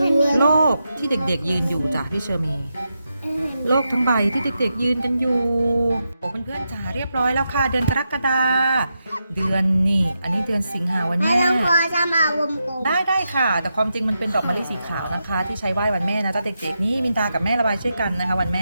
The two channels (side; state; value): both; inverted; correlation -0.86